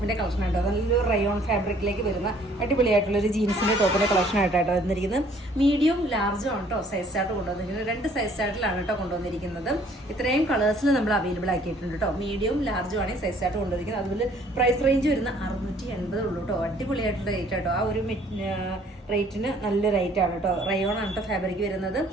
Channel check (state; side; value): normal; both; correlation 0.59